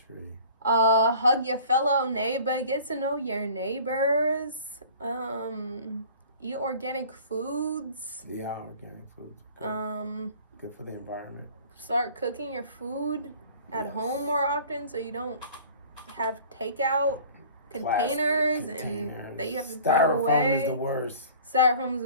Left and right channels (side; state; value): both; inverted; correlation -0.46